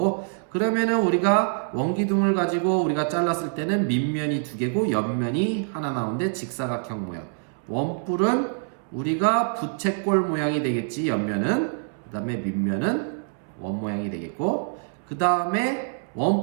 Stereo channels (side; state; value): left; silent; 62 dB below the other